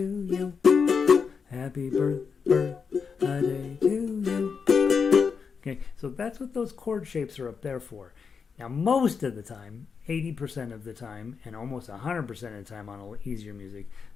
you, happy birthday to you. Okay, so that's what those chord shapes are up there for. Now, most of the time, 80% of the time, and almost 100% of the time on easier music,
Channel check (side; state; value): right; quieter; 5.8 dB